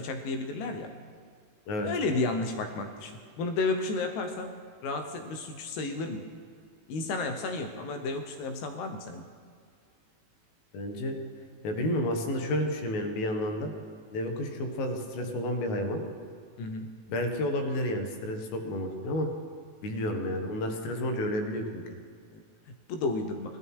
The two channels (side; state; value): right; late; 18 ms